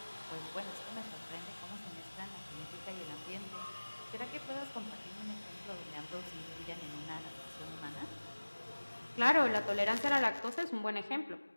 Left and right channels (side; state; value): both; inverted; correlation -1.00